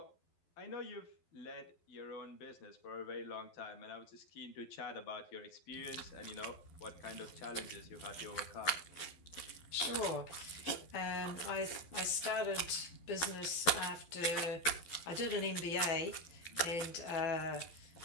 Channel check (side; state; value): right; late; 12 ms